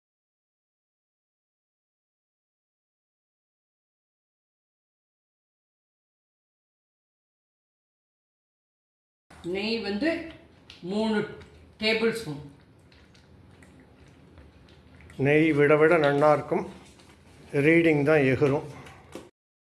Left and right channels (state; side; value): identical; both; correlation 1.00